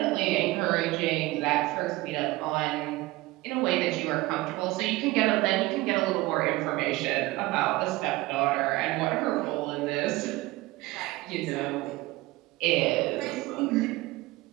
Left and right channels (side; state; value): left; quieter; 19.7 dB